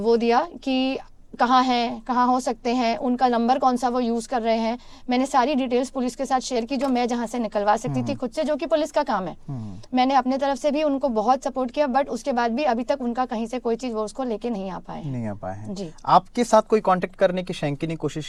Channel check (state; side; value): identical; both; correlation 1.00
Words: दिया कि कहाँ हैं, कहाँ हो सकते हैं, उनका नंबर कौन सा वो यूज़ कर रहे हैं। मैंने सारी डिटेल्स पुलिस के साथ शेयर की जो मैं जहाँ से निकलवा सकती थी खुद से, जो कि पुलिस का काम है। मैंने अपने तरफ से भी उनको बहुत सपोर्ट किया, बट उसके बाद भी अभी तक उनका कहीं से कोई चीज़ वो उसको लेके नहीं आ पाए हैं। जी। आपके साथ कोई कांटेक्ट करने की शैंकी ने कोशिश